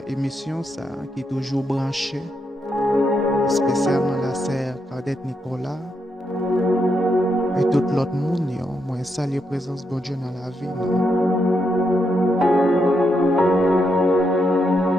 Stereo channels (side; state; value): both; normal; correlation 0.81